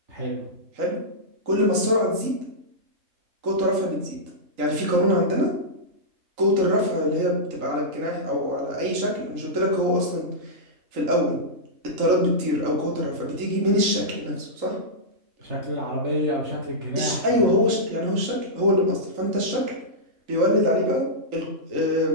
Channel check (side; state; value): left; late; 3.8 ms